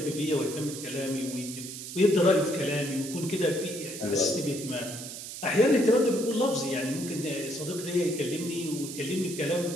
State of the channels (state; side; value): noise; right; hiss, 9 dB below the sound